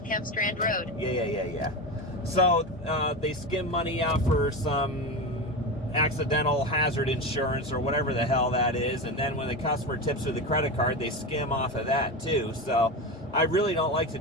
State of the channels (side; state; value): both; normal; correlation 0.20